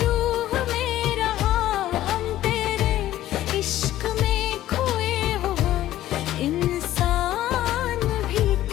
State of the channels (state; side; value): quieter; right; 13.8 dB